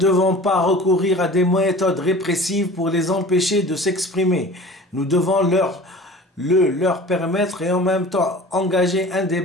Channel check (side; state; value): both; normal; correlation 0.41